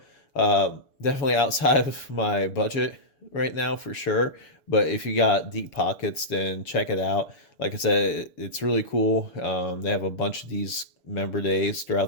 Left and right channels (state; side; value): late; right; 6.7 ms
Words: Definitely outside of my budget right now for sure, but if you got deep pockets, then check it out. Like I said, it's really cool. They have a bunch of these member days